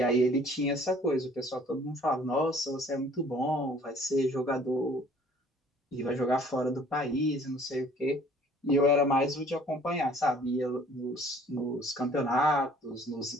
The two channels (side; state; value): both; normal; correlation 0.55